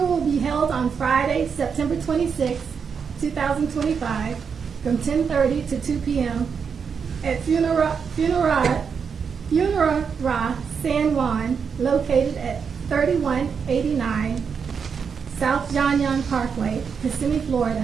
will be held on Friday, September 26, 2025, from 10:30 to 2 p.m. at Funerara San Juan, located at 3189 South John Young Parkway, Kissimmee,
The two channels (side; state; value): left; quieter; 6.3 dB